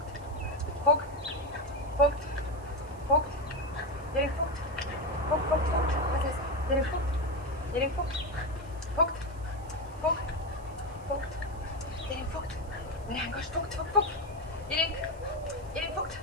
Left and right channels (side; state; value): right; noise; hiss, 26 dB below the sound